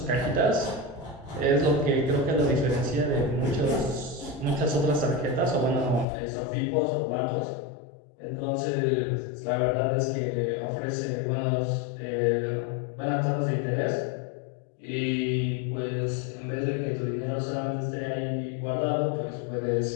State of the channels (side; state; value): right; drops out; at 6.1 s